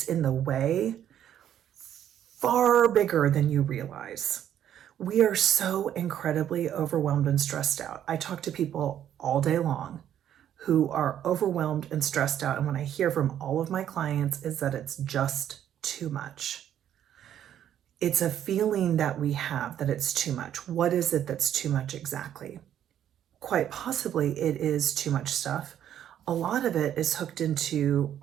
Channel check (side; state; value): left; quieter; 10.4 dB